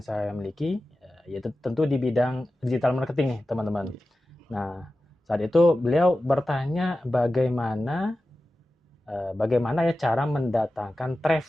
saya miliki, yaitu tentu di bidang digital marketing nih teman-teman. Nah saat itu beliau bertanya bagaimana ya cara mendatangkan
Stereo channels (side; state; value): both; normal; correlation 0.94